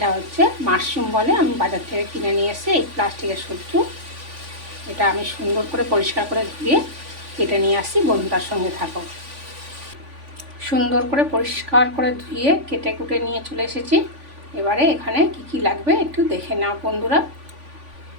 হচ্ছে মাশরুম বলে, আমি বাজার থেকে কিনে নিয়ে এসে এই প্লাস্টিকের সবজি। এটা আমি সুন্দর করে পরিষ্কার করে ধুয়ে কেটে নিয়ে আসি। বন্ধুরার সঙ্গে থাকো। সুন্দর করে পরিষ্কার করে ধুয়ে কেটে কুটে নিয়ে চলে এসেছি। এবারে এখানে কি লাগবে একটু দেখে নাও বন্ধুরা।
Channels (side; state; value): left; late; 3.5 ms